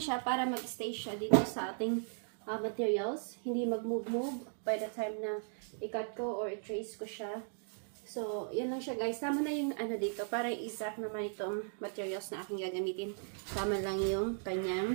para mag-stay siya dito sa ating materials. Hindi mag-move-move by the time na i-cut ko or i-trace ko siya. So, yan lang siya guys. Tama na yung ano dito, para exact naman itong materials na aking gagamitin. Tama lang yung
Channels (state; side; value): silent; left; digital silence